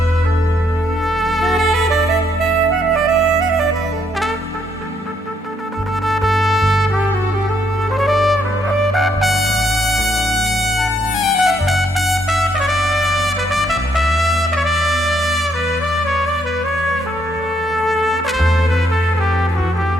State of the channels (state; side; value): normal; both; correlation 0.73